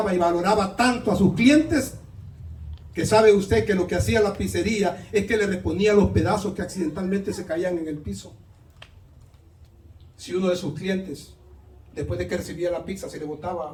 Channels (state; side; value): identical; both; correlation 1.00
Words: y valoraba tanto a sus clientes, que sabe usted que lo que hacía la pizzería es que le reponía los pedazos que accidentalmente se caían en el piso. Si uno de sus clientes, después de que recibía la pizza, se le